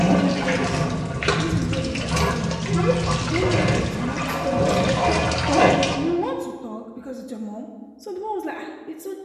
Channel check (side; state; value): both; identical; correlation 1.00